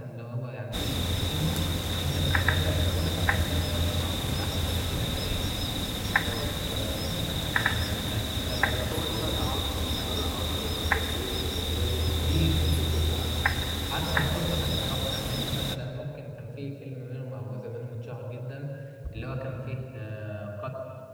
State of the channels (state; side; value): identical; both; correlation 1.00